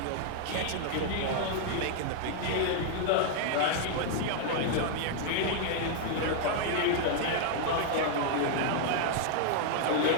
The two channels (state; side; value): different; both; correlation 0.00